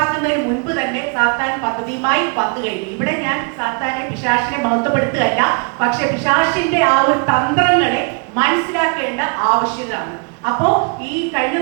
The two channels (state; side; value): quieter; left; 35.9 dB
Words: മുൻപ് തന്നെ സാത്താൻ പദ്ധതിയുമായി വന്നു കഴിഞ്ഞു. ഇവിടെ ഞാൻ സാത്താനെ, പിശാചിനെ മഹത്വപ്പെടുത്തുകയല്ല, പക്ഷെ പിശാചിന്റെ ആ ഒരു തന്ത്രങ്ങളെ മനസ്സിലാക്കേണ്ട ആവശ്യകതയാണ്. അപ്പോ ഈ കഴിഞ്ഞ